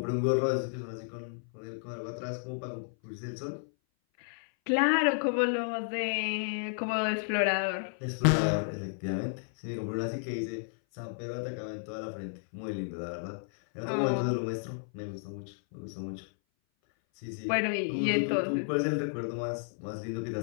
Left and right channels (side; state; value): right; silent; 56 dB below the other